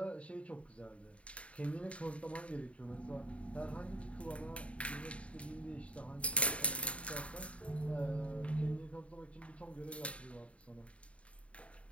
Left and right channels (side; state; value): right; late; 0.063 ms